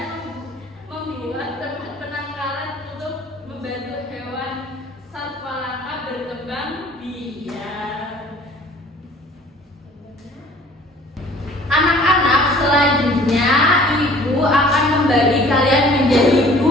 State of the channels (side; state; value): both; normal; correlation 0.51